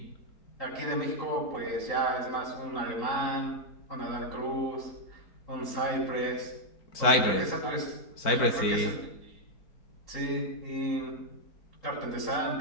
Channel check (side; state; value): right; late; 4.5 ms